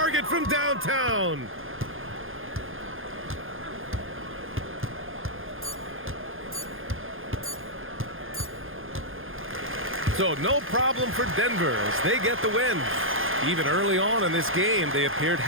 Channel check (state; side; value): late; left; 0.59 ms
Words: from downtown. So no problem for Denver as they get the win. Even early on in this game, they appeared